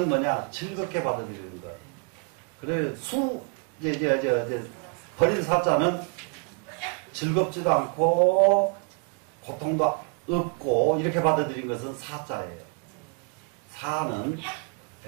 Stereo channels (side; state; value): left; quieter; 34.4 dB